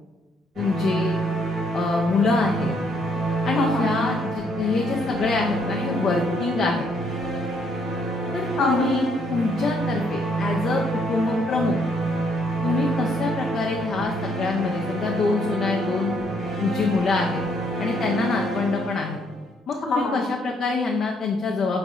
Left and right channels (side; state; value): both; normal; correlation 0.70